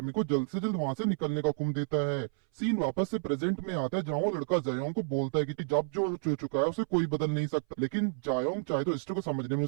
को जल्द से जल्द वहां से निकलने का हुक्म देता है। सीन वापस से प्रेजेंट में आता है, जहाँ वो लड़का जायोंग को बोलता है कि जब जो हो चुका है उसे कोई बदल नहीं सकता, लेकिन जायोंग चाहे तो हिस्ट्री को समझने में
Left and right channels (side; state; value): left; silent; 57 dB below the other